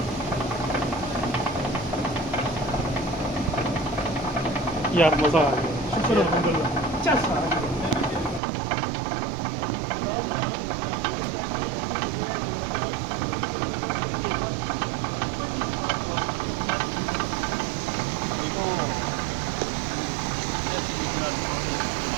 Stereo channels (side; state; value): left; drops out; at 8.4 s